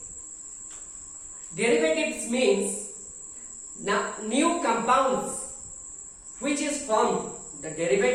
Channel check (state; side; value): identical; both; correlation 1.00